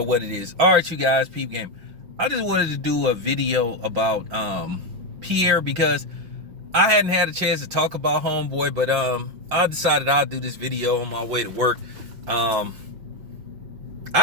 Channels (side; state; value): left; late; 5.7 ms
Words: what it is. All right, you guys, peep game. I just wanted to do a video about Pierre because I hadn't had a chance to talk about homeboy, but I decided I'll do this video on my way to work. I